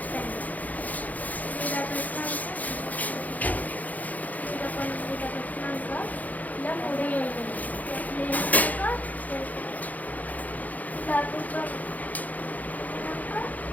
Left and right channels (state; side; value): late; right; 0.079 ms